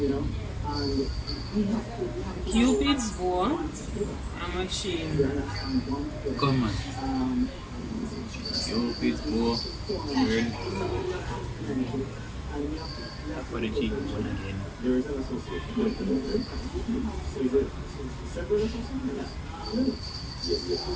Cupid's bow. And my chin. Come on. Cupid's bow. Turn. For the cheekbone again.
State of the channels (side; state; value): both; identical; correlation 1.00